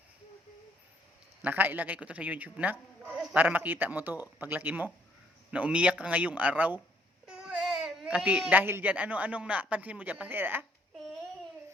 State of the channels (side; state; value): both; normal; correlation 0.66